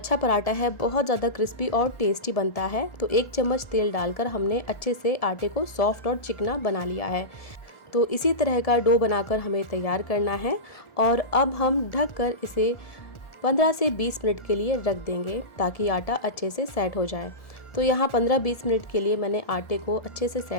पराठा है बहुत ज़्यादा क्रिस्पी और टेस्टी बनता है। तो 1 चम्मच तेल डालकर हमने अच्छे से आटे को सॉफ्ट और चिकना बना लिया है। तो इसी तरह का डो बनाकर हमें तैयार करना है और अब हम ढककर इसे 15 से 20 मिनट के लिए रख देंगे ताकि आटा अच्छे से सेट हो जाए। तो यहाँ 15-20 मिनट के लिए मैंने आटे को अच्छे से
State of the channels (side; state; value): right; late; 1.7 ms